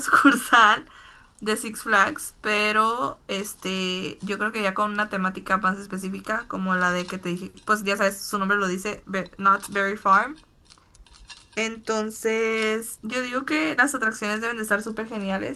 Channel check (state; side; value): identical; both; correlation 1.00